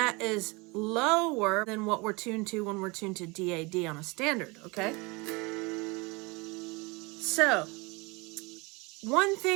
is lower than what we're tuned to when we're tuned to DAD on a standard, okay? So, one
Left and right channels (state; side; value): quieter; left; 26.5 dB